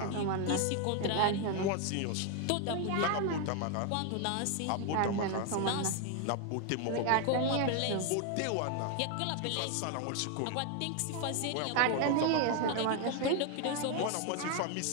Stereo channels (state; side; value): different; both; correlation 0.01